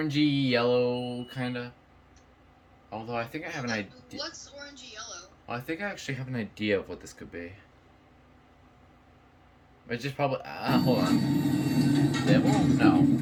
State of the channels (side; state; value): both; identical; correlation 1.00